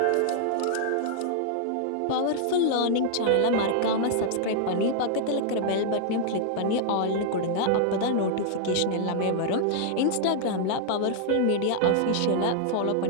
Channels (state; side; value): different; both; correlation -0.01